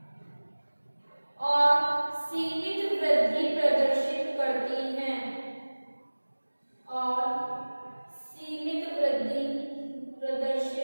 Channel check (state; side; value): inverted; both; correlation -1.00